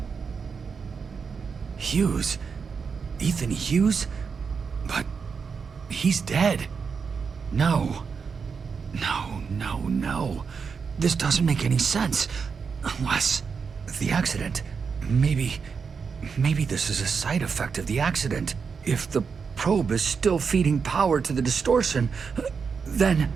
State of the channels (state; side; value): quieter; left; 5.7 dB